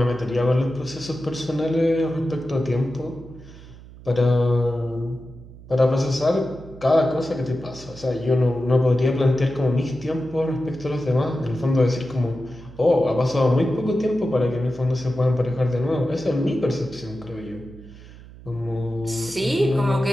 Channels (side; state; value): right; noise; hum, 18 dB below the sound